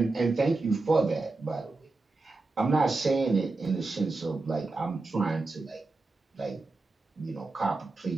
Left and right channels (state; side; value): quieter; left; 3.5 dB